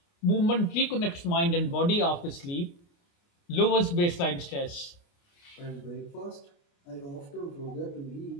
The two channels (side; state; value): right; late; 29 ms